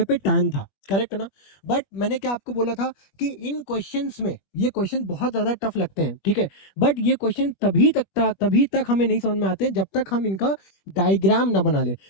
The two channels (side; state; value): right; late; 21 ms